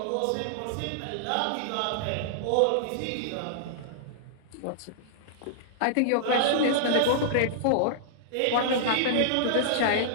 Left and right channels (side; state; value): both; different; correlation -0.02